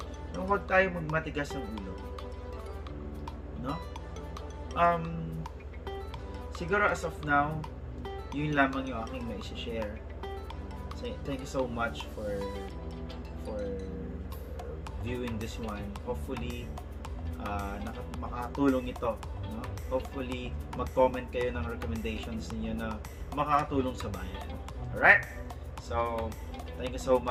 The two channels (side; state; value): both; identical; correlation 1.00